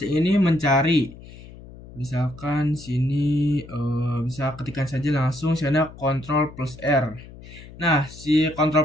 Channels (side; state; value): left; noise; hum, 18 dB below the sound